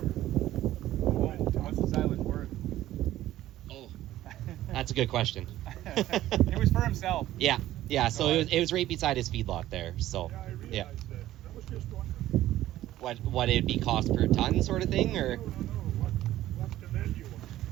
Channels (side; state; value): left; quieter; 14.2 dB